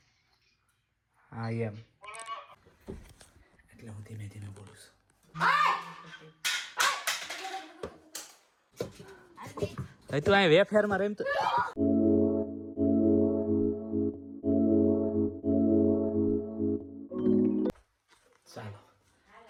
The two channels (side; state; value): both; identical; correlation 1.00